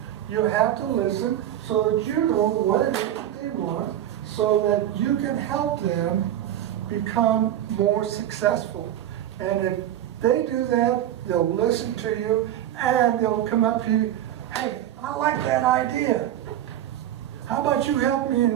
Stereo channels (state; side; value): quieter; left; 11.6 dB